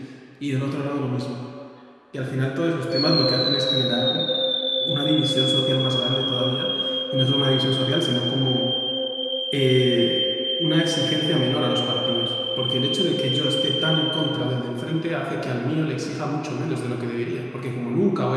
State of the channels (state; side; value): identical; both; correlation 1.00